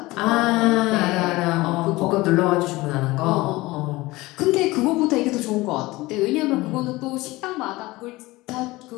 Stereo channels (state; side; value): quieter; right; 20.3 dB